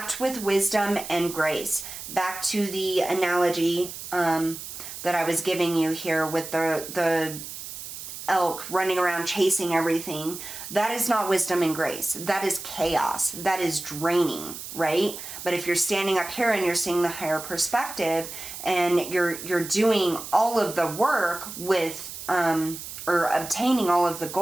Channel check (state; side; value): noise; right; hiss, 10 dB below the sound